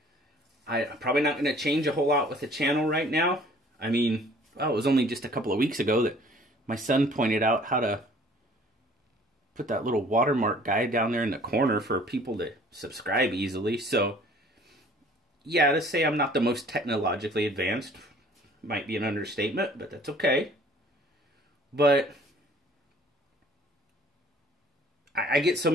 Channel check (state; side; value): normal; both; correlation 0.54